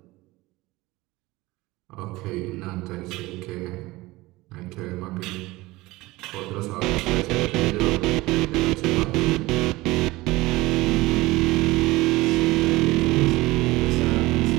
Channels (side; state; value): left; quieter; 20.1 dB